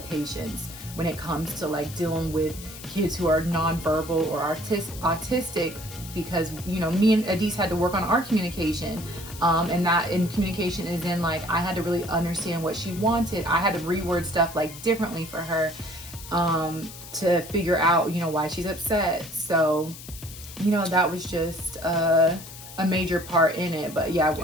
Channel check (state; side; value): noise; left; hiss, 14 dB below the sound